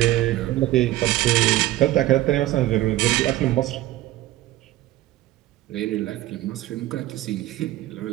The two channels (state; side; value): quieter; left; 15.6 dB